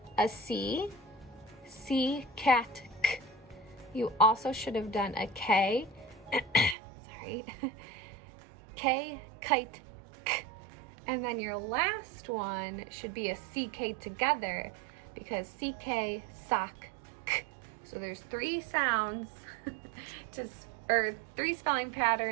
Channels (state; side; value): drops out; left; at 6.8 s